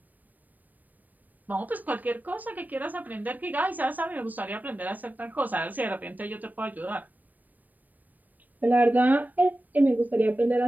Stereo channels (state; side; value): late; left; 0.085 ms